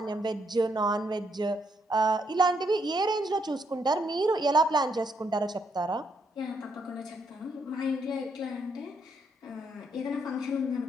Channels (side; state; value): both; normal; correlation 0.75